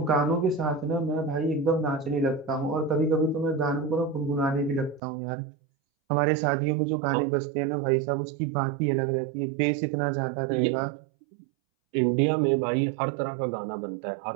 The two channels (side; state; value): left; drops out; at 5.0 s